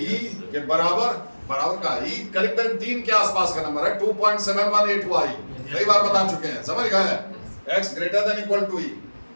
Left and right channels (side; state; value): both; inverted; correlation -1.00